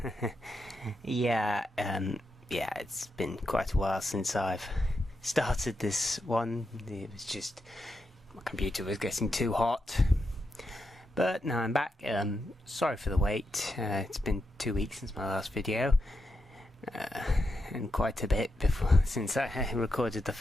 Yeah, it's been quite a while since I've started this one. It was just my computer was getting too hot. But now I'm back. Sorry for the wait. It's been 2 weeks since my last video. And quite a bit before since I recorded the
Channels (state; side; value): normal; both; correlation 0.86